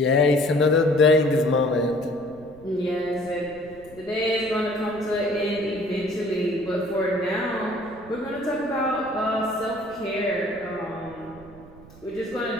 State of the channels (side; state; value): right; noise; rumble, 21 dB below the sound